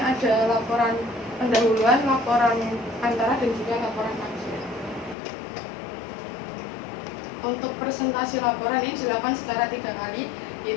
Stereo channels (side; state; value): right; drops out; at 5.2 s